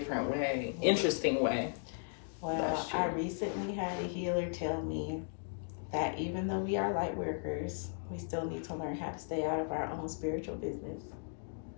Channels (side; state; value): right; silent; digital silence